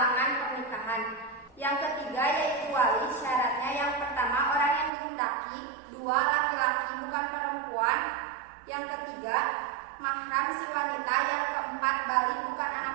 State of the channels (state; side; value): drops out; left; at 4.9 s